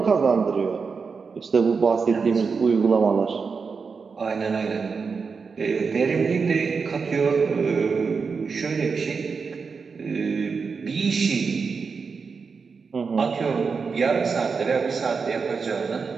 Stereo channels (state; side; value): quieter; left; 5.2 dB